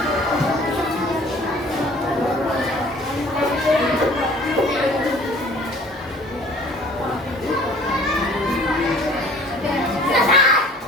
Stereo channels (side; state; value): both; normal; correlation 0.51